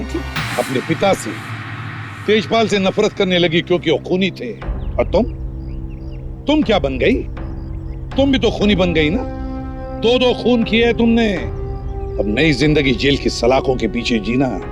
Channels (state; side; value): identical; both; correlation 1.00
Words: थी। अपने पिता से, तेजपाल से नफरत करने लगी क्योंकि वो खूनी थे। और तुम क्या बन गई? तुम भी तो खूनी बन गई ना। दो खून किए तुमने। अब नई जिंदगी जेल की सलाखों के पीछे जीना।